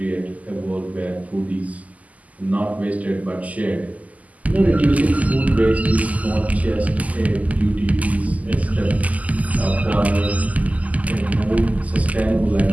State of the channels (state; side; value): late; left; 0.074 ms